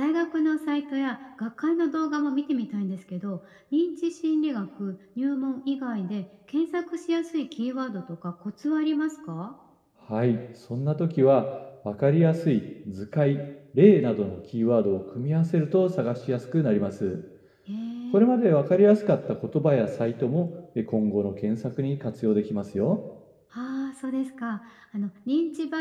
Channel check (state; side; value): identical; both; correlation 1.00